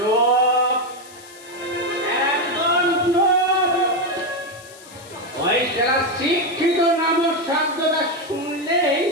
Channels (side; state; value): left; noise; hiss, 20 dB below the sound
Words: একদম চুপ। ওই যারা শিক্ষিত নামক শব্দটা শুনলেই